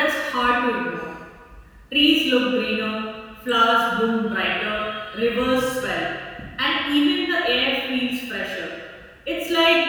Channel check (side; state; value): both; identical; correlation 1.00